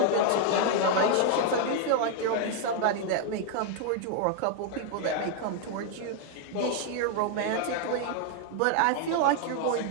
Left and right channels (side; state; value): both; different; correlation 0.00